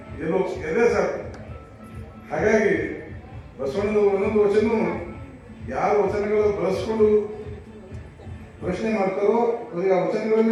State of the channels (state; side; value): identical; both; correlation 1.00